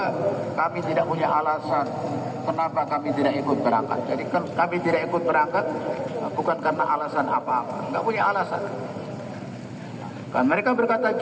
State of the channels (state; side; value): identical; both; correlation 1.00